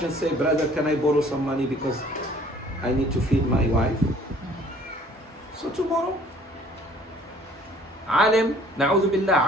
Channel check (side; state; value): both; normal; correlation 0.55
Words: and say, brother, can I borrow some money because I need to feed my wife? So tomorrow, alim, na'udhu